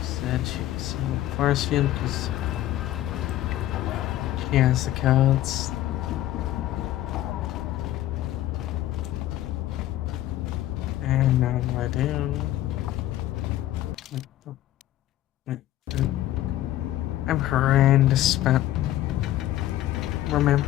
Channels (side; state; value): right; quieter; 14.0 dB